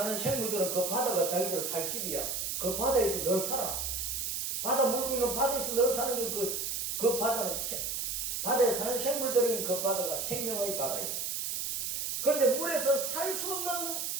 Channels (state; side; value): noise; right; hiss, 2 dB below the sound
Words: 생물들은 그 바다가 자기들 살 집이야. 그 바다에서 늘 살아. 바다 물고기는 바다에서 늘 사는 게 그 바다는 바다에 사는 생물들은 그 바다가 생명의 바다예요. 그런데 물에서 살 수 없는